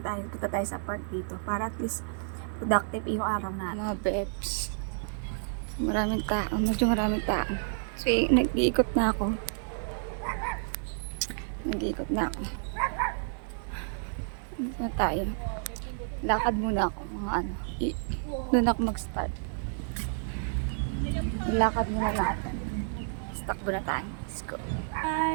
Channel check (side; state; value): left; silent; digital silence